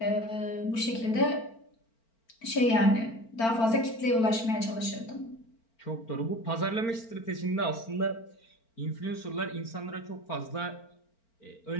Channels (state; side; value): late; right; 4.4 ms